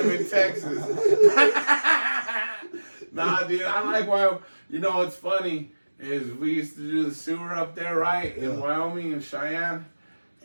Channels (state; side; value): inverted; both; correlation -1.00